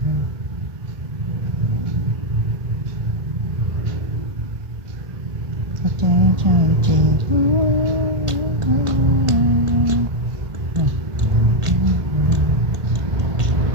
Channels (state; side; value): late; left; 1.5 ms